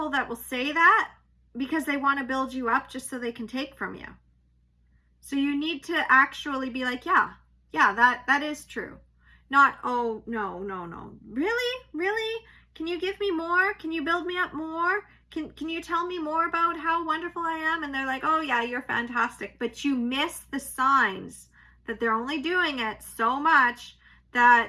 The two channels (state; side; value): identical; both; correlation 1.00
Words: that will say that because they want to build you up just so they can take from you. So you need to actually be like, yeah, that is true. Not, oh, no. Really? Can you give me more? Can you build me up more? Can you tell me more about how wonderful I am? And they're like, oh yeah, you're fantastic. But you miss the signs that they're only doing it so much